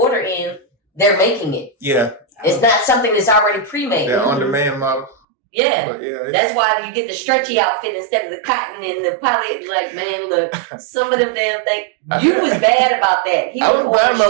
in, they're making it. Yeah. It's not something that's already pre-made. They're on-demand model. Yeah. That's why you get the stretchy outfit instead of the cotton and the poly. Like, man, look, some of them damn things. You was bad about that. He I was buying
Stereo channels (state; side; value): drops out; left; at 5.2 s